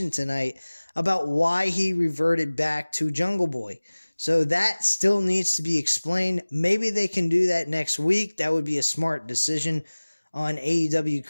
tonight about why he reverted back to Jungle Boy. So that still needs to be explained. Maybe they can do that next week. That would be a smart decision on AEW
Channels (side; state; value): both; inverted; correlation -1.00